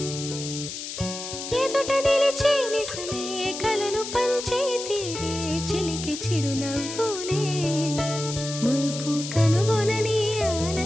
ఎదుట నిలిచి నిజమే కలలు పంచే తీరే చిలికి చిరునవ్వులే మునుపు కనుగొనని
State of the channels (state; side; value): noise; left; hiss, 8 dB below the sound